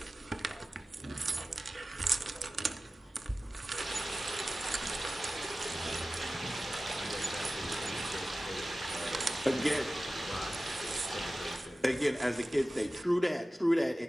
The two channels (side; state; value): both; normal; correlation 0.96